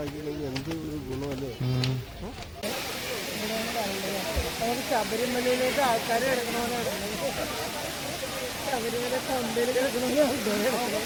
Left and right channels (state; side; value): identical; both; correlation 1.00